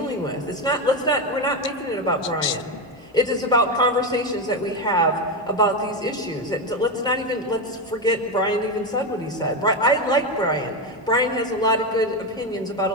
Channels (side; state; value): both; normal; correlation 0.12